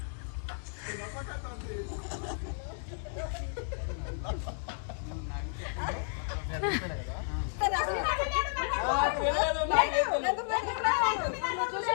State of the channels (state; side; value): silent; right; 56 dB below the other